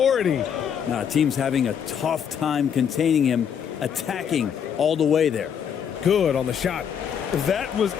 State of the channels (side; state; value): right; quieter; 8.0 dB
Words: Now, team's having a tough time containing him, attacking all the way there. Good on the shot. That was